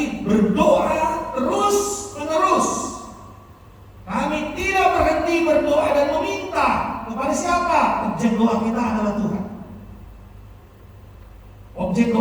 berdoa terus menerus. Kami tidak berhenti berdoa dan meminta kepada siapa? Objek doa kita adalah Tuhan. Objek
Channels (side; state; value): both; identical; correlation 1.00